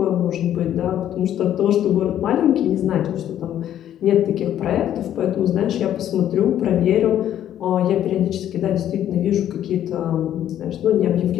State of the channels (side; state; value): right; quieter; 11.2 dB